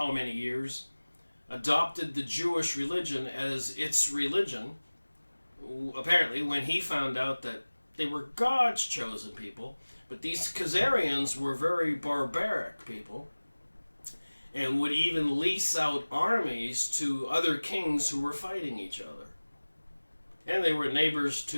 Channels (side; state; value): both; inverted; correlation -1.00